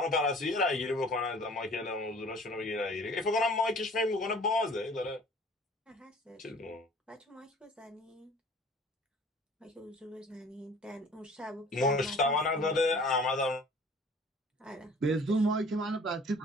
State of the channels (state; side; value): normal; both; correlation 0.49